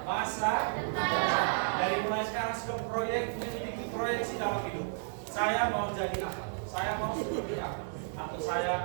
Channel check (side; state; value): left; silent; digital silence